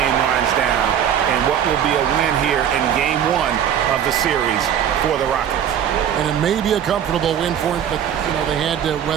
winds down, and what will be a win here in game 1 of the series for the Rockets. And it may be a comfortable win for him, but they had to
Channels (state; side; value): quieter; left; 9.3 dB